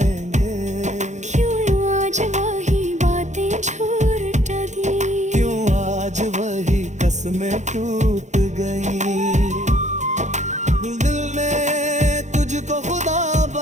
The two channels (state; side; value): late; left; 0.34 ms